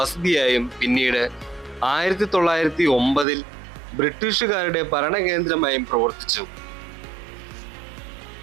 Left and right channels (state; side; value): drops out; left; at 3.2 s